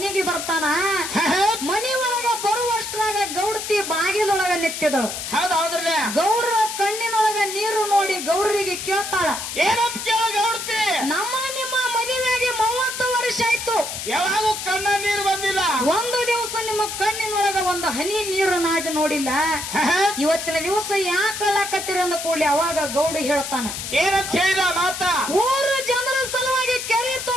ಬರ್ತಾನ. ಮನಿ ಒಳಗ ಬರುವಷ್ಟ್ರಾಗ ಗೌಡತಿ ಬಾಗಿಲೊಳಗ ನಿಂತಿದಳು. ಹೌದೌದ್ರಲ್ಲ ಗೌಡ್ರ ಕಣ್ಣಿನೊಳಗ ನೀರು ನೋಡಿ ಗೌಡರಿಗೆ ಕೇಳ್ತಾಳ. ಏನಂತ ಕೇಳ ಗೌಡ್ತಿ ನಮ್ಮ ನಿಮ್ಮ ಮದುವೆಗೆ 30 ವರ್ಷ ಆಯ್ತು, ಯಾವಾಗೂ ಕಣ್ಣ ನೀರು ಬಂದಿಲ್ಲ, ಒಂದು ದಿವಸ ನಿಮ್ಮ ಕಣ್ಣಿನೊಳಗ ಒಂದು ಹನಿ ನೀರು ನಾಡಿ ನೋಡಿಲ್ಲ, ಇವತ್ತಿನ ದಿವಸ ಯಾಕೆ ಅಳ್ಳಾಕತ್ತೀರ ಅಂದ ಕೂಡಲಿ ಅವಾಗ ಗೌಡ ಹೇಳ್ತಾನ. ಏನಂತ ಹೇಳಿದ ಮಾತ ಊರು ಜನರ ಸಲುವಾಗಿ ಕೆರೆ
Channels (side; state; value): left; noise; hiss, 6 dB below the sound